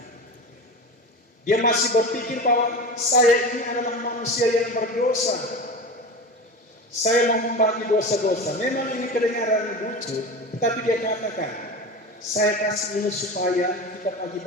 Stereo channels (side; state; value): both; normal; correlation 0.28